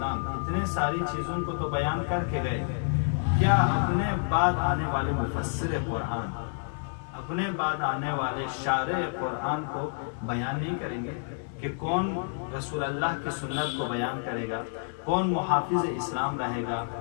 इतने सारी चीज़ों को तो बयान करके गए, क्या अपने बाद आने वाले मुफस्सिर कुरान, अपने बाद आने वाले शारे कुरान को बयान नहीं करेंगे कि कौन रसूल अल्लाह की सुन्नत को बयान करेगा, कौन मुहाफिज इस्लाम रहेगा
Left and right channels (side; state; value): right; silent; digital silence